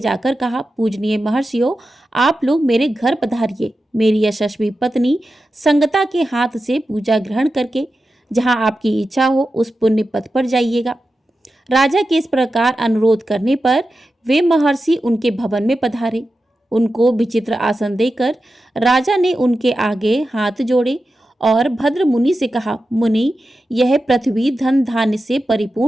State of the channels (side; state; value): both; normal; correlation 0.91